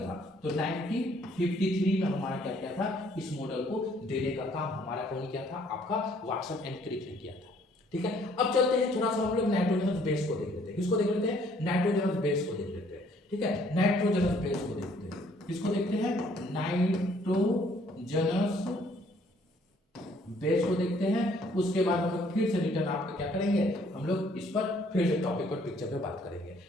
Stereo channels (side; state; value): both; normal; correlation 0.62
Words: तो 1953 में हमारा क्या किया था, इस मॉडल को देने का काम हमारा कौन किया था, आपका वाटसन एंड क्रिक ने किया था, ठीक है। अब चलते हैं थोड़ा सा हम लोग नाइट्रोजनस बेस को देख लेते हैं। किसको देख लेते हैं, नाइट्रोजनस बेस को देख लेते हैं, ठीक है, नाइट्रोजनस बेस को देखते हैं। किसको देखते हैं, नाइट्रोजनस बेस को देखते हैं। उसके बाद हम लोग फिर से रिटर्न आपका क्या करेंगे, हम लोग इस पर फिर से टॉपिक पर पिक्चर पे बात करेंगे,